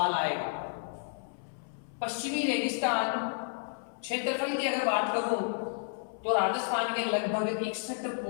आएगा। पश्चिमी रेगिस्तान क्षेत्रफल की अगर बात करूं तो राजस्थान के लगभग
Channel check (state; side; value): silent; right; 57 dB below the other